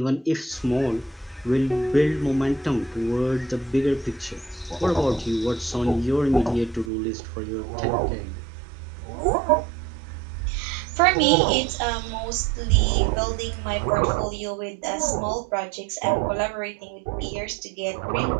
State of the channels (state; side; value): drops out; left; at 6.9 s